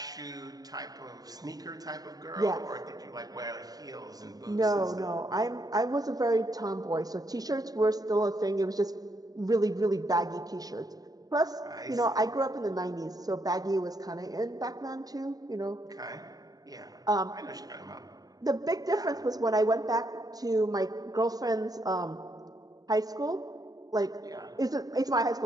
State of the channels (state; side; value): late; left; 0.18 ms